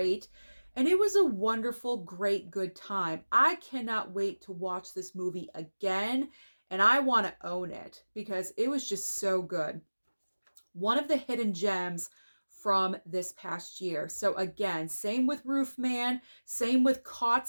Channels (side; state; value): both; inverted; correlation -1.00